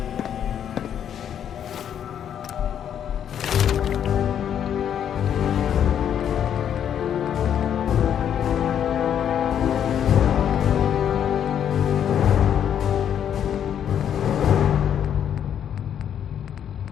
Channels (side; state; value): right; quieter; 9.2 dB